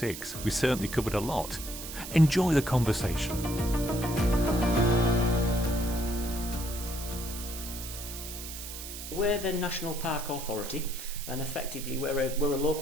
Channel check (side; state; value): right; noise; hiss, 9 dB below the sound